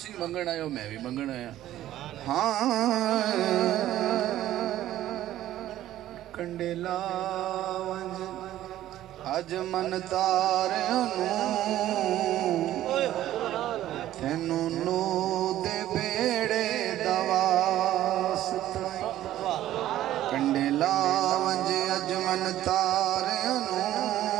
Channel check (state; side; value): quieter; left; 13.4 dB